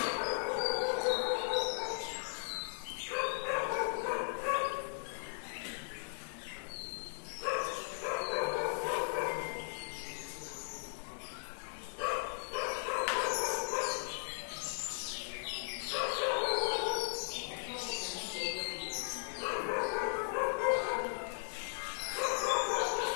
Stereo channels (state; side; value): silent; right; digital silence